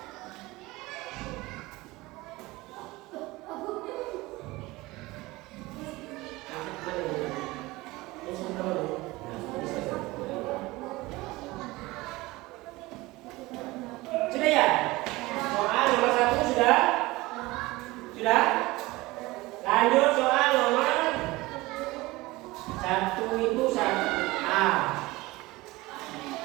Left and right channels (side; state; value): left; quieter; 20.6 dB